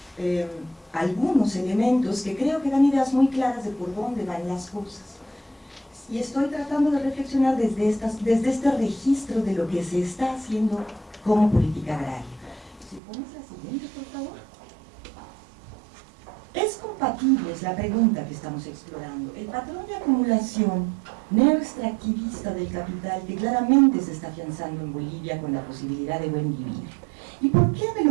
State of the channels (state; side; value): drops out; left; at 13.0 s